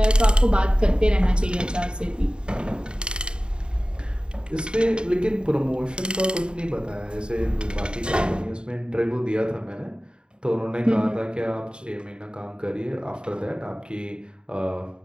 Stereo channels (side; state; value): left; late; 0.051 ms